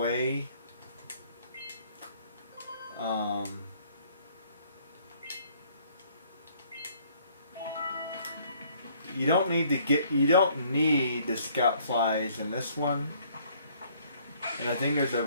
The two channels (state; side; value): inverted; both; correlation -0.61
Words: You don't need to get. You don't need the scout flies in this one. And I think there's a